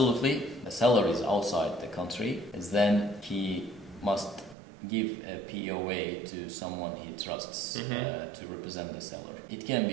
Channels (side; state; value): left; drops out; at 4.5 s